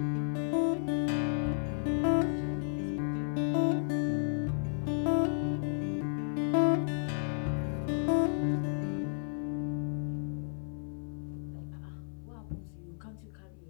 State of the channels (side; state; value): right; silent; 56 dB below the other